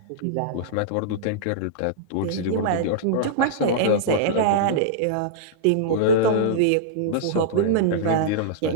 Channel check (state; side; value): different; both; correlation -0.02